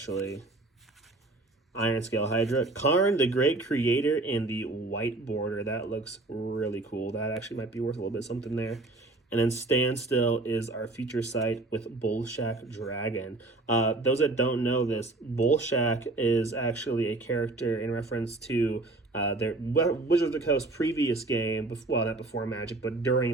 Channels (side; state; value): left; quieter; 3.0 dB